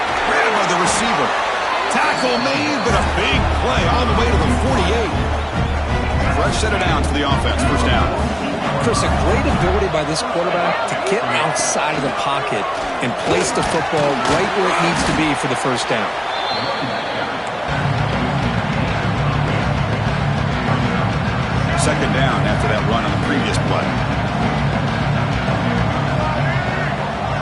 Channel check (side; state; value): both; identical; correlation 1.00